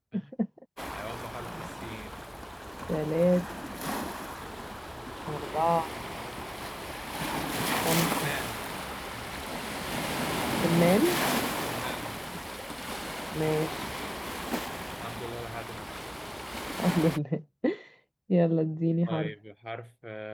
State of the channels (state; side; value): identical; both; correlation 1.00